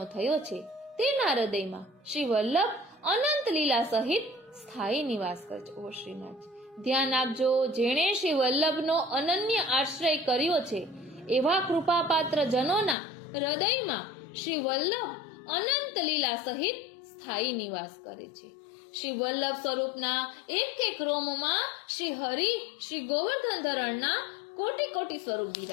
થયો છે, તેના હૃદયમાં શ્રી વલ્લભ અનંત લીલા સહિત સ્થાયી નિવાસ કરે છે. ઓ શ્રીનાથ, ધ્યાન આપજો, જેણે શ્રી વલ્લભનો અનન્ય આશ્રય કર્યો છે એવા કૃપાપાત્ર જનોના હૃદયમાં શ્રી વલ્લભ અનંત લીલા સહિત સ્થાયી નિવાસ કરે છે. શ્રી વલ્લભ સ્વરૂપના એક એક રોમમાં શ્રી હરિ શ્રી ગોવર્ધન ધરણના કોટી કોટી સ્વરૂપ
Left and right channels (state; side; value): drops out; right; at 13.0 s